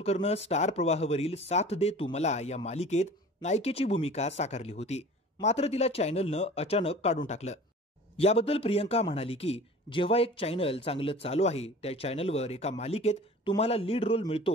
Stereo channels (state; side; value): normal; both; correlation 0.43